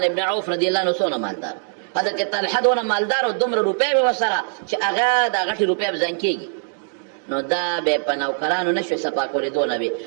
ابن عوف رضی الله عنه څونه مالدار، حضرت طلحه دونه مالدار او دومره روپۍ به ورسره چې هغه دا غټې روپۍ به زنګ کېږي. نو دا به په نوکرانو نه شوې صفا کولې، دونه به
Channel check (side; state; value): left; silent; digital silence